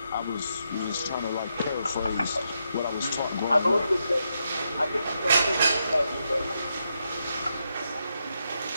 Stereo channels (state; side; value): inverted; both; correlation -0.82